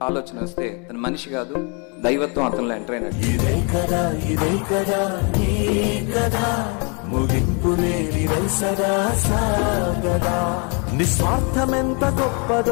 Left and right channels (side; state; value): right; quieter; 35.0 dB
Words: ఆలోచన వస్తే తన మనిషి కాదు, దైవత్వం అతనిలో ఎంటర్ అయినట్టు. నిస్వార్థమెంత